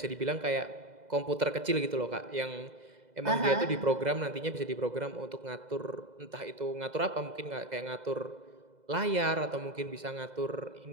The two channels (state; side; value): late; left; 2.0 ms